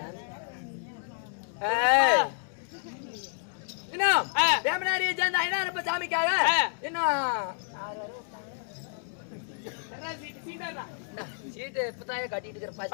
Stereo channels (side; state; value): right; silent; digital silence